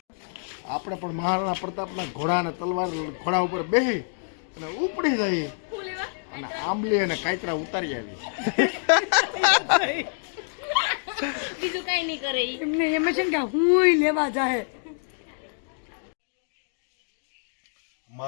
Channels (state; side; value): silent; right; digital silence